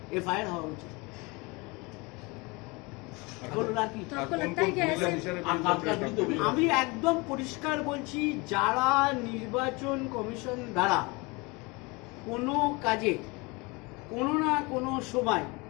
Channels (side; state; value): right; quieter; 26.4 dB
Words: এফআইআর হওয়া উচিত। আমি একদম পরিষ্কার বলছি, যারা নির্বাচন কমিশন দ্বারা কোনো কাজে কোনো না কোনো সময়